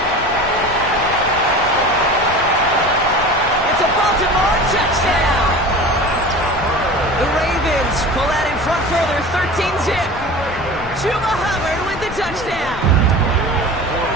It's a Baltimore touchdown! The Ravens pull out in front further, 13-zip. Chuba Hubbard with the touchdown.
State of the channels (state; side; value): noise; left; rumble, 13 dB below the sound